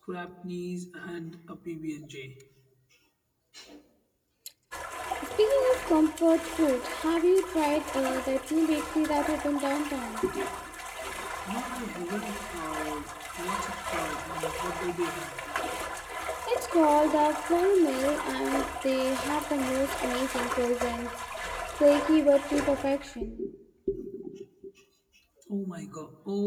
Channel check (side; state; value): both; identical; correlation 1.00